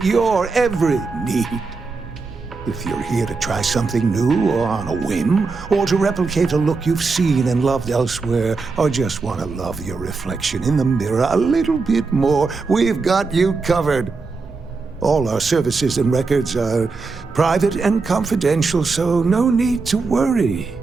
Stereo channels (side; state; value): left; quieter; 4.3 dB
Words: your every need. If you're here to try something new or on a whim, or to replicate a look you've seen and loved elsewhere, or just want to love your reflection in the mirror a little bit more, we've got you covered. All our services and records are private and confidential, so no need to worry.